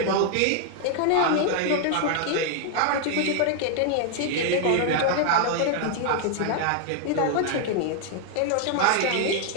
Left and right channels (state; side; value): different; both; correlation 0.00